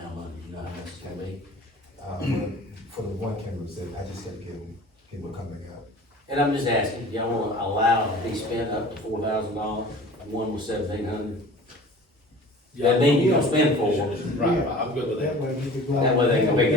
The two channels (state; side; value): normal; both; correlation 0.43